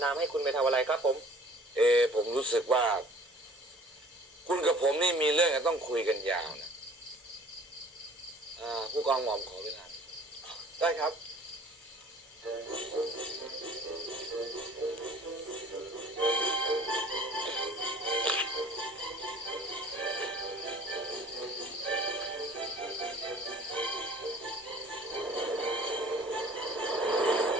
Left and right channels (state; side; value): normal; both; correlation 0.49